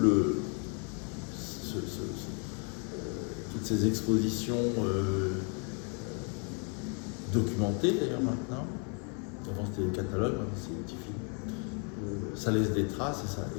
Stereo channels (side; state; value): right; quieter; 38.6 dB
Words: ces expositions documentées d'ailleurs maintenant, avant c'était des catalogues, maintenant c'est des petits films, ça laisse des traces et